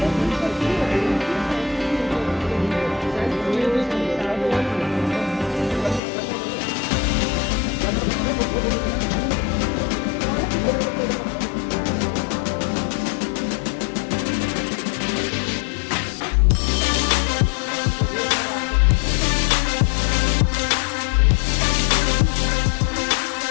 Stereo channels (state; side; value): drops out; right; at 6.0 s